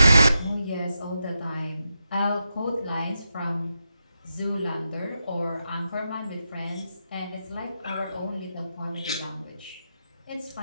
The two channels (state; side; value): inverted; both; correlation -0.87